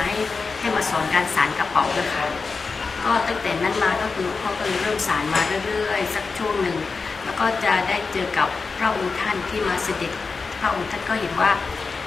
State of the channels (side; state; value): right; quieter; 4.5 dB